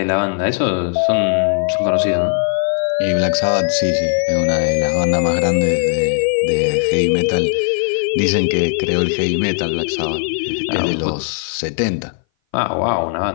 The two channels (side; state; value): right; silent; 59 dB below the other